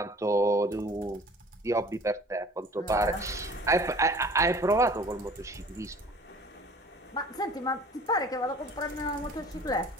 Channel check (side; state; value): both; normal; correlation 0.47